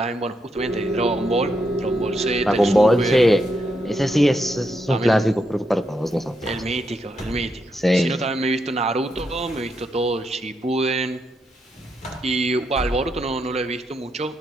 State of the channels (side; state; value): both; normal; correlation 0.81